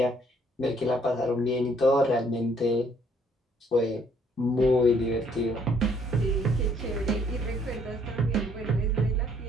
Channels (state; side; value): normal; both; correlation 0.65